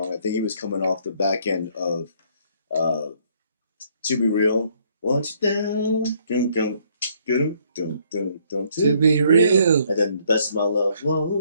I think he was coming off the back end of To Be Real. Want you down, To Be Real. And then Best of My Love.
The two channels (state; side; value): inverted; both; correlation -0.65